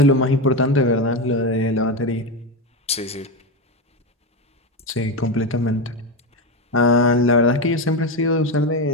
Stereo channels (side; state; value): both; normal; correlation 0.14